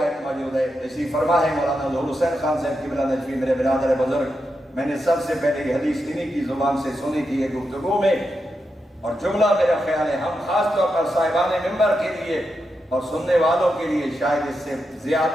موجود ہے، اسی فرما ہے مولانا ظہور حسین خان صاحب قبلہ نجفی، میرے برادر بزرگ، میں نے سب سے پہلے یہ حدیث انہی کی زبان سے سنی تھی ایک گفتگو میں، اور جملہ میرا خیال ہے ہم خاص طور پر صاحبان ممبر کے لیے اور سننے والوں کے لیے شاید اس سے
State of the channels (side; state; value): both; normal; correlation 0.86